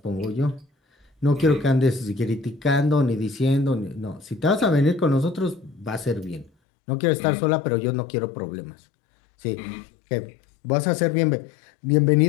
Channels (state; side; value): drops out; right; at 6.5 s